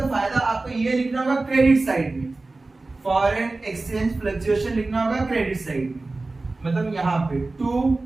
फायदा आपको ये लिखना होगा क्रेडिट साइड में, फॉरेन एक्सचेंज फ्लक्चुएशन लिखना होगा क्रेडिट साइड में, मतलब यहाँ पे टू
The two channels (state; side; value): quieter; left; 3.3 dB